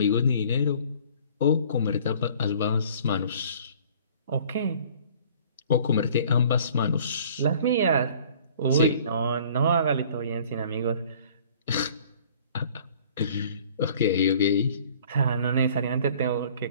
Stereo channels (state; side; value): inverted; both; correlation -0.52